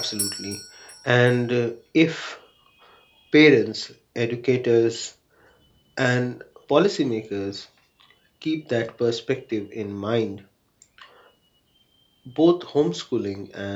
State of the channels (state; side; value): identical; both; correlation 1.00